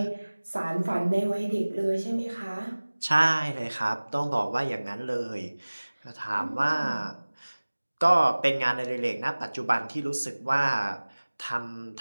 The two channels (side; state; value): both; inverted; correlation -1.00